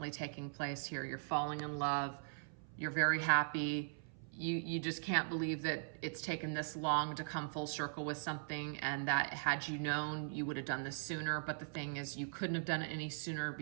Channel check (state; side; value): silent; left; 51 dB below the other